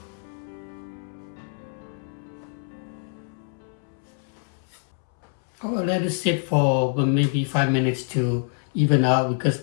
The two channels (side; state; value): right; silent; 61 dB below the other